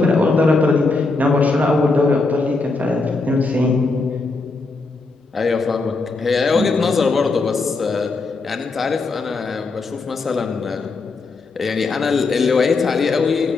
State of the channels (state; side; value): quieter; right; 3.8 dB